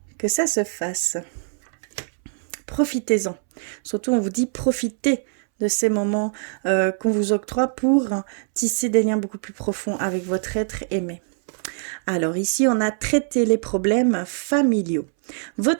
que ça se fasse. Profitez-en. Surtout, on vous dit profitez de ces moments qu'on vous octroie pour tisser des liens beaucoup plus profonds avec votre être aimé. Alors ici, on a traité les problèmes familiaux.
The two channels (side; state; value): left; silent; 64 dB below the other